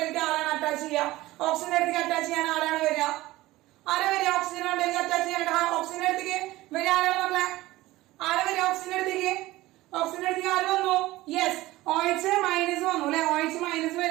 ആരാണ് അറ്റാച്ച് ചെയ്യുക? ഓക്സിജന്റെ അടുത്തേക്ക് അറ്റാച്ച് ചെയ്യാൻ ആരാണ് വരിക? ഓക്സിജൻ മണ്ടയിലേക്ക് അറ്റാച്ച് ചെയ്യാനായിട്ട് ഓക്സിജന്റെ അടുത്തേക്ക് വരിക ആരാണ് മക്കളെ? ആരാ വരിക ഓക്സിജന്റെ അടുത്തേക്ക്? ഓക്സിജന്റെ അടുത്തേക്ക് ആര് വന്നു? യെസ്, OH മൈനസ് വന്നു അല്ലെ? OH മൈനസ്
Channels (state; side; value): quieter; left; 17.9 dB